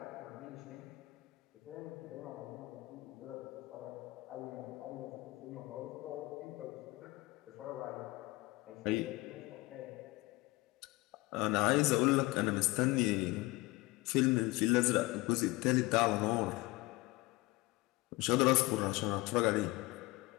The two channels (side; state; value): right; quieter; 21.6 dB